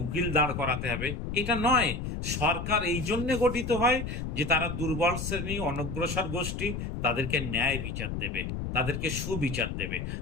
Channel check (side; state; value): left; noise; rumble, 4 dB below the sound